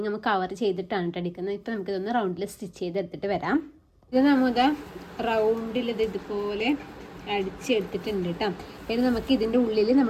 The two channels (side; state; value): both; identical; correlation 1.00